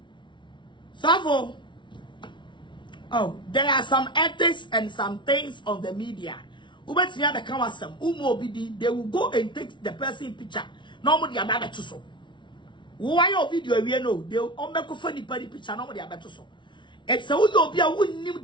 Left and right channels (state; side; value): late; right; 0.24 ms